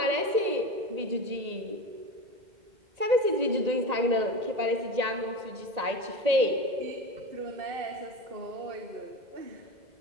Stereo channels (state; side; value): late; left; 1.8 ms